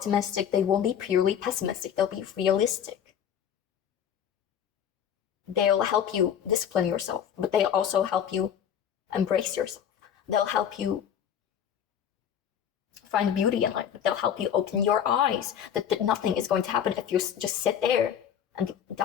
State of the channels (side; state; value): right; quieter; 8.9 dB